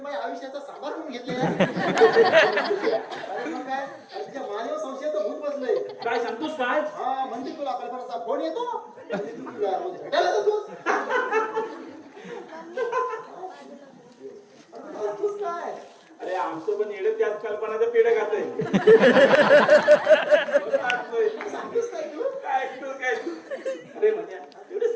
आयुष्याचा सामार करून घेतलेला. अरे मग काय, अरे तुझ्या मानव संशयाचं भूत बसलंय. काय सांगतोस काय? हा म्हणजे तुला कल्पनाचा फोन येतो आणि तू तुला रोज भेटायला जातोस. अरे करतोस काय? अरे आमचं पण येडे त्याच कल्पनाचं पेढ खातंय. सांगतोस काय तू? काय ऐकतोस काय? अरे म्हणजे एवढं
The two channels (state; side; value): identical; both; correlation 1.00